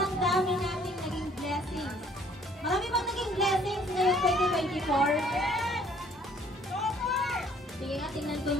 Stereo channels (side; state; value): both; normal; correlation 0.59